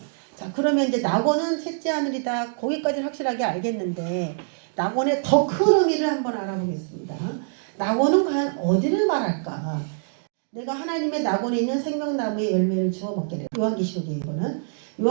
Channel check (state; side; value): silent; left; digital silence